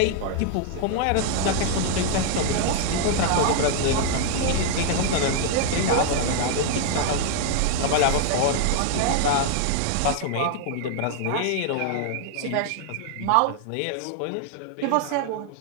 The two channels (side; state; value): both; different; correlation 0.00